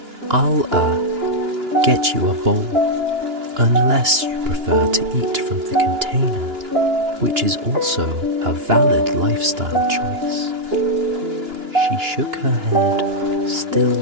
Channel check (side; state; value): left; late; 2.9 ms